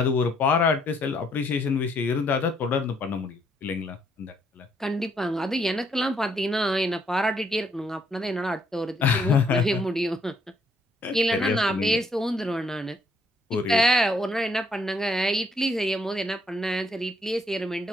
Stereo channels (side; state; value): both; normal; correlation 0.70